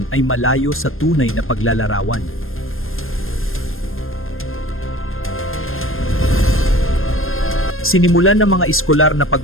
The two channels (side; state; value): right; late; 0.60 ms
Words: ay malayo sa tunay na paglalarawan? Sinimulan ng mga eskolar na